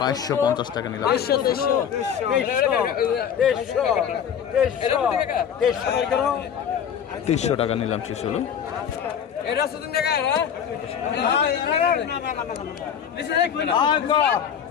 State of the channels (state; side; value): quieter; right; 8.3 dB